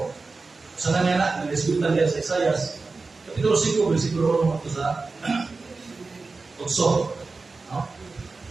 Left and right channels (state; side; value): quieter; left; 3.9 dB